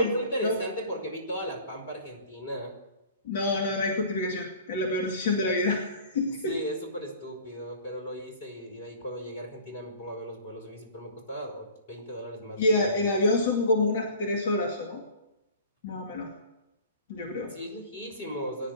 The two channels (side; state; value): both; inverted; correlation -0.44